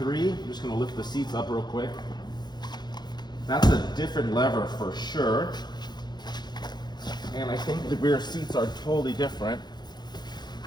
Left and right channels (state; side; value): late; right; 0.21 ms